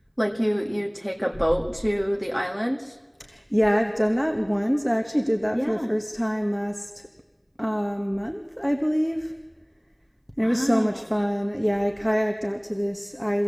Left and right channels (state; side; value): identical; both; correlation 1.00